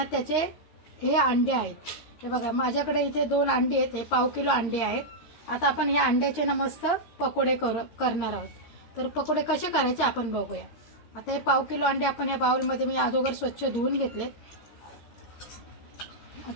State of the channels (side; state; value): right; late; 13 ms